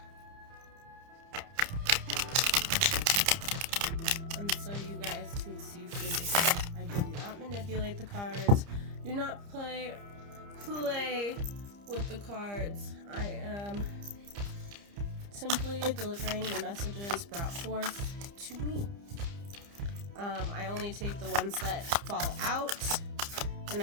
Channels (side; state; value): left; late; 30 ms